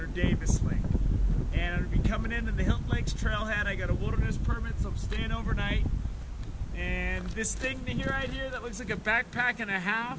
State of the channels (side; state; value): both; identical; correlation 1.00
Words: Davis Lake. And I'm going to be coming into the Hilton Lakes Trailhead. I got a wilderness permit, so I'm staying overnight. And this thing right here that looks like a backpack and a